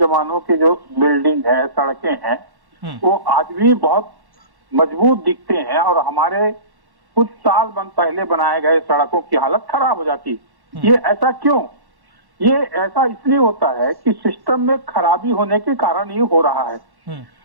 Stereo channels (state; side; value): late; left; 1.1 ms